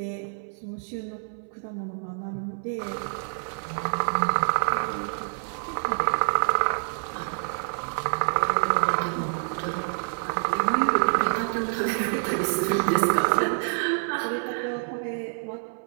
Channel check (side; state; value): left; silent; 60 dB below the other